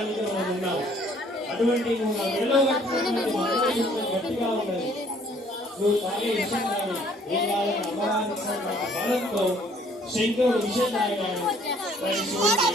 మనం ఉన్నాం. అటువంటి నువ్వు నా మెడలో కట్టినటువంటి మంగళసూత్రం గట్టిగా ఉన్నది, నువ్వు తాగే విషయం కానీ ఏం కావాలని అమ్మవారి బలంతో శంకరుడు విషయం తాగాడు. దాని శివుడికి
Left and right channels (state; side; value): normal; both; correlation 0.60